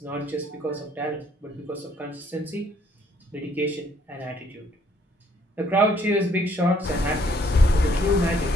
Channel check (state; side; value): normal; both; correlation 0.66